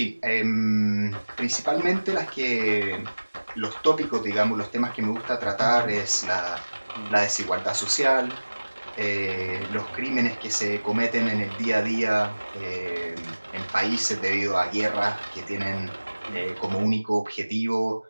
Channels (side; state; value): both; inverted; correlation -1.00